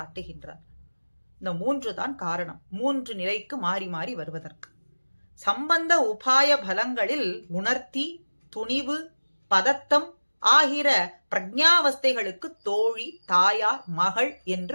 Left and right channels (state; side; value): inverted; both; correlation -1.00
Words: இந்த 3 தான் காரணம், 3 நிலைக்கு மாறி மாறி வருவதற்கு. சம்பந்த உபாய பலங்களில் உணர்த்தி, துணிவு, பதத்தம் ஆகிற பிரஜாவஸ்தைகளுக்கு தோழி, தாயார், மகள்